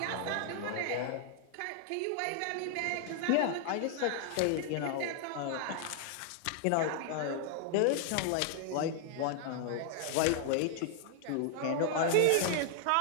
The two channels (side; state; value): both; different; correlation 0.00